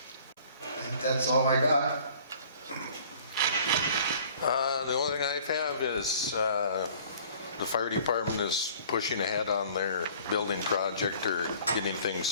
I think that's all I got. The only thing I have is the fire department is pushing ahead on their building project, or getting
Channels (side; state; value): both; inverted; correlation -0.52